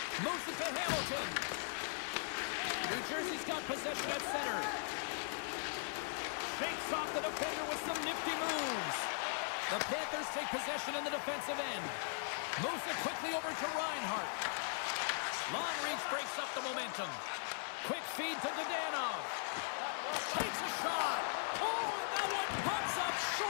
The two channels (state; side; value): silent; right; digital silence